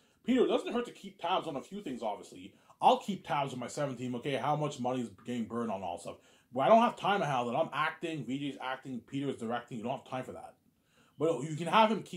Peter, it doesn't hurt to keep tabs on a few things, obviously. I'll keep tabs on my 17, okay, how much money is getting burned on all stuff. But I don't have time to handle that. I'm acting, VJ's acting, Peter's directing. You don't have time for that. But you can have him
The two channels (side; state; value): both; identical; correlation 1.00